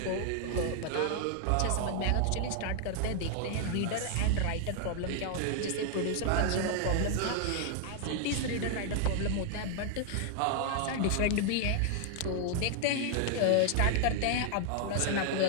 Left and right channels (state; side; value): different; both; correlation 0.00